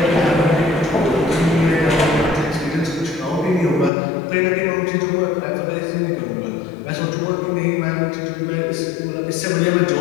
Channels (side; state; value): right; drops out; at 3.9 s